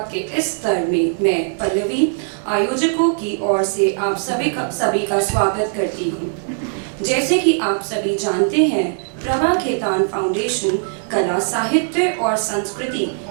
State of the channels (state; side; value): silent; left; digital silence